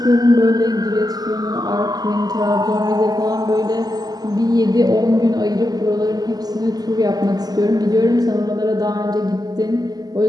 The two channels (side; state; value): left; late; 0.19 ms